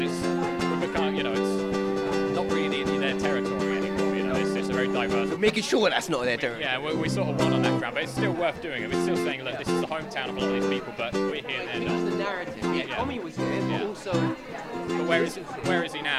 not really their territory anymore. It's a very diverse. We're making sure that's not their territory. Yeah, we sort of won on that ground, but it's still worth doing it. We're still saying, look, this is the hometown of a lot of these people, but we're here and they're not. It's the narrative. Yeah, Tommy was here, but also. But where is he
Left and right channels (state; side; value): identical; both; correlation 1.00